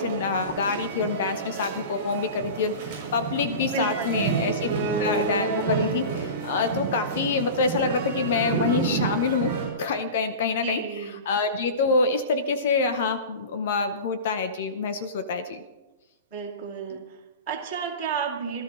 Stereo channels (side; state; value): both; inverted; correlation -0.30